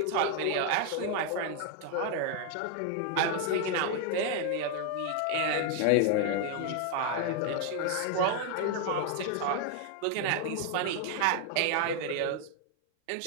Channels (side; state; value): both; different; correlation 0.01